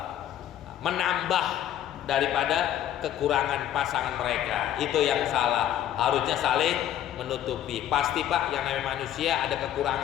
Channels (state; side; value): quieter; right; 11.4 dB